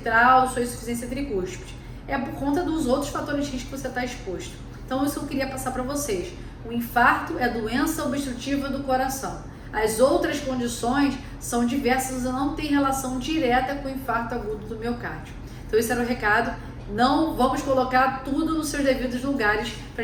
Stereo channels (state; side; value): identical; both; correlation 1.00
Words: sua insuficiência tricúspide. É por conta dos outros fatores de risco que você está exposto. Então isso eu queria passar para vocês. O infarto é doença obstrutiva do coração. As outras condições são diversas e não têm relação direta com o infarto agudo do miocárdio. Então esse era o recado. Não vamos colocar tudo nos seus devidos lugares para